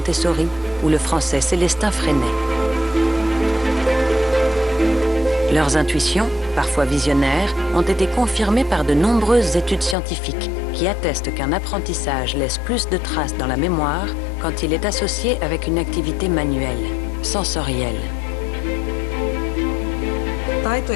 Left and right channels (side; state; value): right; drops out; at 10.0 s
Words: ou le français Célestin Freinet. Leurs intuitions, parfois visionnaires, ont été confirmées par de nombreuses études scientifiques qui attestent qu'un apprentissage laisse plus de traces dans la mémoire quand il est associé avec une activité manuelle, sensorielle. Taito-